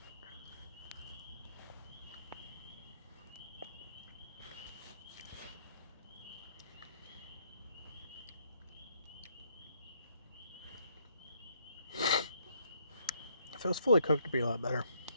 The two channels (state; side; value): inverted; both; correlation -0.71